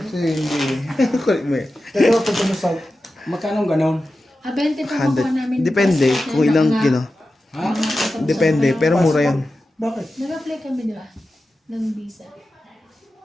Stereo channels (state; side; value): normal; both; correlation 0.93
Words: hindi. Kulit mo eh. Pero pag ano sa... Magkano ganon? 20 pa makuha namin. 100. Depende kung ilang kino. Ha? Depende, pero mura yan. Bakit? Nag-apply kami, di ba? Ng visa.